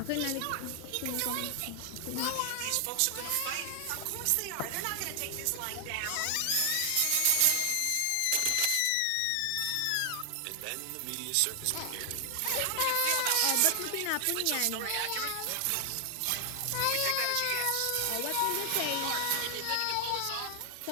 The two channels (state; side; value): different; both; correlation 0.00